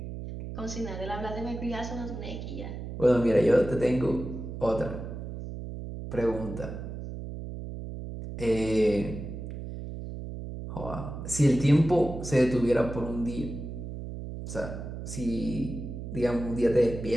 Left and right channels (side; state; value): right; noise; hum, 8 dB below the sound